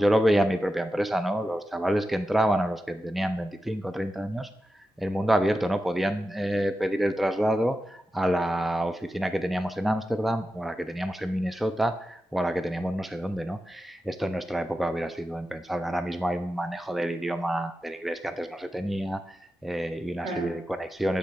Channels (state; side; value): normal; both; correlation 0.91